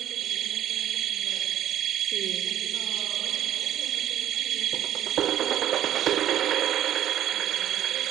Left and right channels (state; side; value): quieter; left; 11.5 dB